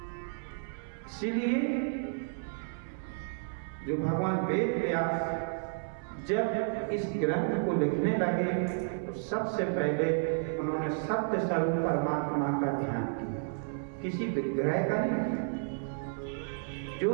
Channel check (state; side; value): silent; left; 57 dB below the other